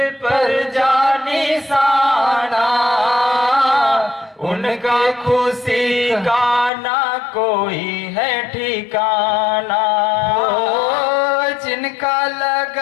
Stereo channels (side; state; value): right; drops out; at 6.7 s